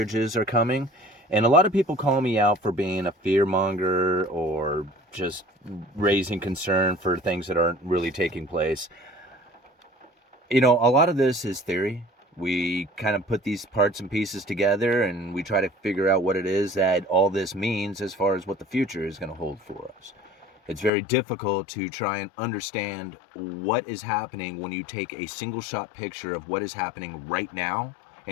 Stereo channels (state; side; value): drops out; right; at 20.9 s